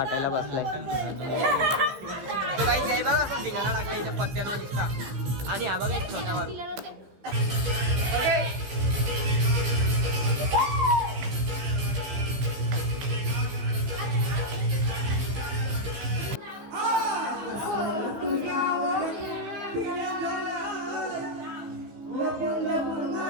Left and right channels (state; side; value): late; left; 15 ms